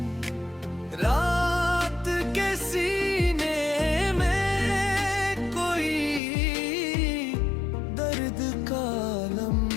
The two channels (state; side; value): drops out; right; at 6.2 s